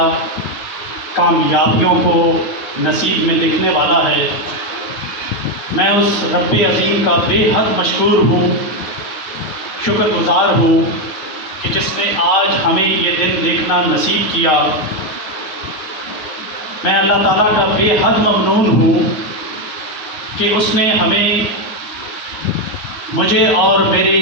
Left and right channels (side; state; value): right; late; 9.5 ms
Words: کامیابیوں کو نصیب میں دیکھنے والا ہے۔ میں اس رب عظیم کا بے حد مشکور ہوں، شکر گزار ہوں کہ جس نے آج ہمیں یہ دن دیکھنا نصیب کیا۔ میں اللہ تعالیٰ کا بے حد ممنون ہوں کہ اس نے ہمیں، مجھے اور میرے